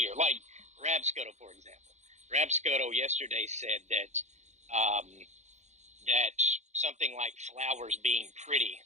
like Rab Scuttle, for example. Rab Scuttle yesterday said that that something like flowers being pretty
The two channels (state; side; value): late; left; 0.33 ms